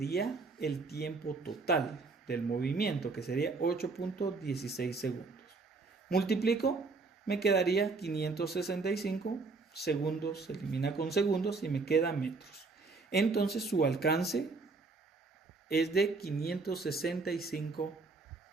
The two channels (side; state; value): left; quieter; 4.0 dB